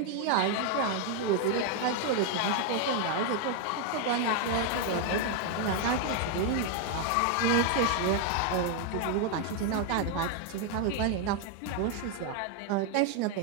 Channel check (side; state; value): both; different; correlation 0.01